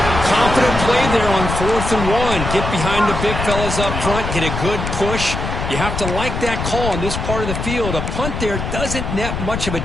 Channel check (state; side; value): noise; left; rumble, 4 dB below the sound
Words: Confident play there on 4th and 1. Get behind the big fellas up front. Get a good push. You have to like that call in this part of the field. A punt there doesn't net much of a